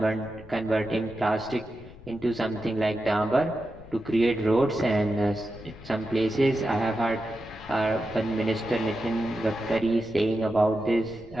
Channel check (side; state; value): left; noise; rumble, 18 dB below the sound